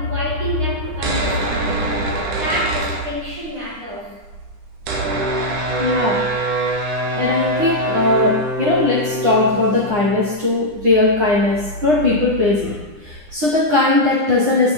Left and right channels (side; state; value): left; late; 9.8 ms